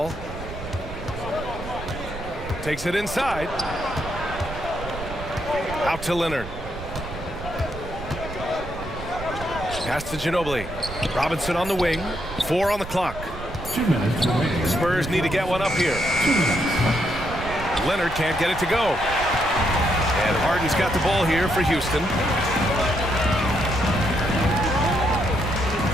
Takes it inside. Out to Leonard. Pass to Ginobili. Robinson on the wing. 4 on the clock. 2 minutes remaining. The Spurs need to get one up here. Leonard can't get it to go. And Harden's got the ball here for Houston.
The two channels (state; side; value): noise; right; rumble, 11 dB below the sound